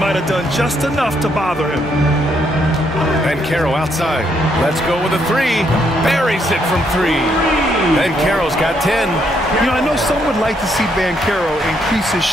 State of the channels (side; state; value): both; normal; correlation 0.74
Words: have done just enough to bother him. Banchero outside. Let's go with a 3. Buries it from 3. Banchero's got 10. You know, I know some would like to see Banchero increase his